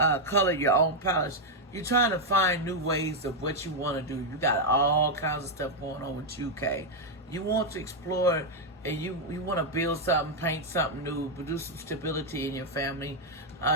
color your own palette. You're trying to find new ways of what you want to do. You got all kinds of stuff going on with you, Kay. You want to explore and you want to build something, paint something new, produce some stability in your family.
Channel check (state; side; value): normal; both; correlation 0.00